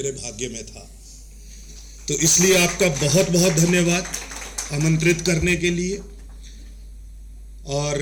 भाग्य में था. तो इसलिए आपका बहुत बहुत धन्यवाद आमंत्रित करने के लिए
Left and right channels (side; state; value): both; identical; correlation 1.00